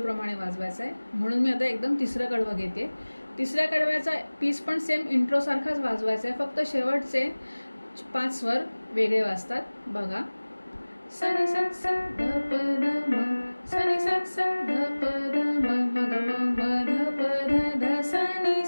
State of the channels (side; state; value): both; inverted; correlation -1.00